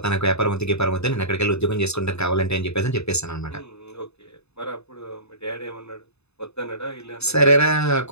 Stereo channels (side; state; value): right; late; 0.80 ms